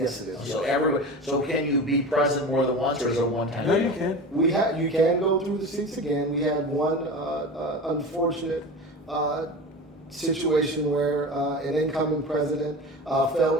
it is. So can you be president more than once, or is it a one-time? No, deal? you can. You can go through the seats again. We had one unfortunate situation where an incoming president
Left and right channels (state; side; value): normal; both; correlation 0.31